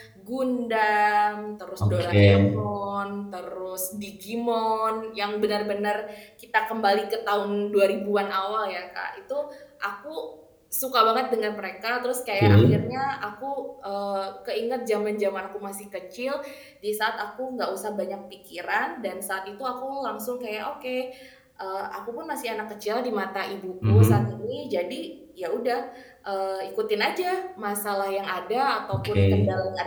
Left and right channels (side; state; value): both; identical; correlation 1.00